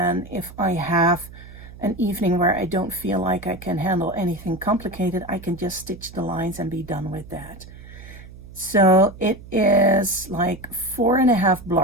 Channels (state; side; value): noise; right; hum, 17 dB below the sound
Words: if I have an evening where I don't feel like I can handle anything complicated, I can just stitch the lines and be done with that. So it is like 4.5